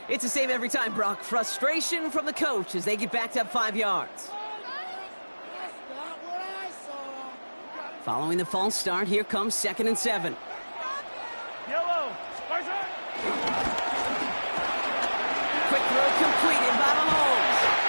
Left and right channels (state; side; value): inverted; both; correlation -1.00